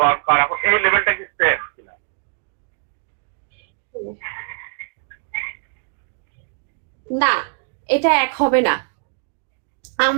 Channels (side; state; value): left; silent; digital silence